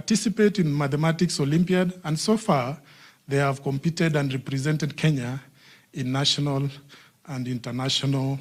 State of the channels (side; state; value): both; identical; correlation 1.00